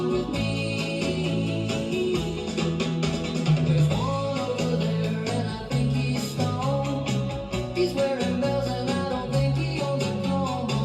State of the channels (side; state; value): both; identical; correlation 1.00